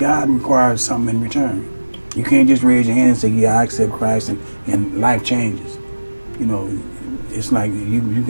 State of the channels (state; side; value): inverted; both; correlation -1.00